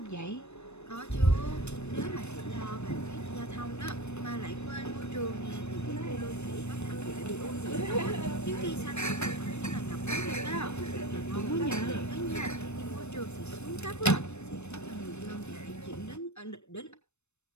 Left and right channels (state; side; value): late; right; 0.81 ms